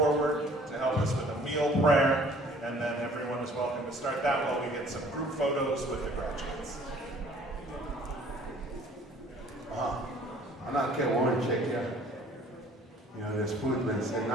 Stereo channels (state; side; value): normal; both; correlation 0.54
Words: to help us with a meal prayer, and then everyone is welcome to start that while we get some group photos with the graduates. I'm not getting one check yet. You know, this food's been sitting